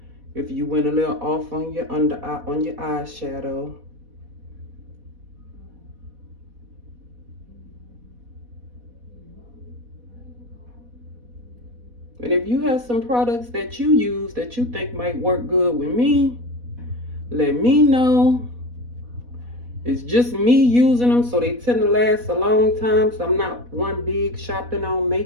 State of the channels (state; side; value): late; left; 4.1 ms